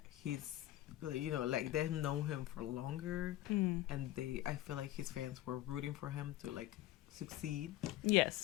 he's, like, they've known him for longer, and I feel like his fans were rooting for him to, like, succeed.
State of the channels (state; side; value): quieter; right; 15.0 dB